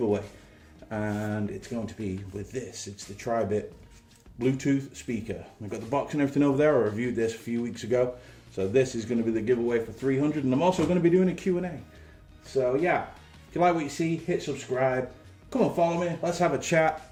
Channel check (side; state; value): both; identical; correlation 1.00